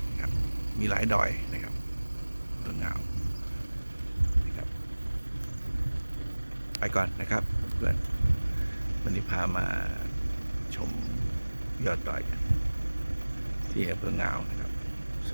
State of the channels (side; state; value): both; inverted; correlation -1.00